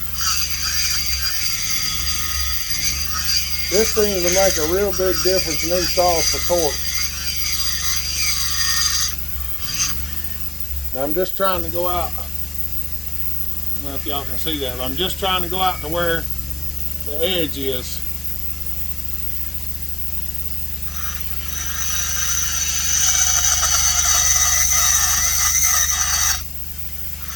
This seems to make a real big difference in these saws for torque. Now I'm just trying to go out. I don't know if y'all can see that, but I'm just trying to go out to where the edge is.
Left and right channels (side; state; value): left; noise; hiss, 14 dB below the sound